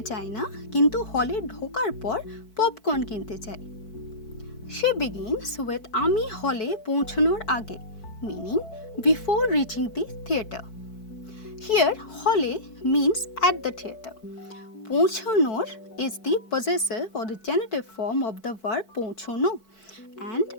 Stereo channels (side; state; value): right; late; 4.6 ms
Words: চাই না, কিন্তু হলে ঢোকার পর পপকর্ন কিনতে চাই। She begins with আমি হলে পৌঁছানোর আগে, meaning before reaching the theater. Here, hole means at the theater. পৌঁছানোর is the possessive or the genitive form of the verb পৌঁছানো, and